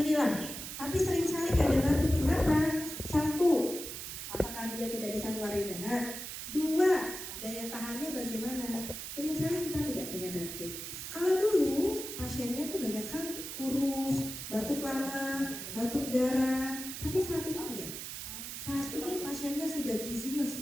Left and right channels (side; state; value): right; noise; hiss, 7 dB below the sound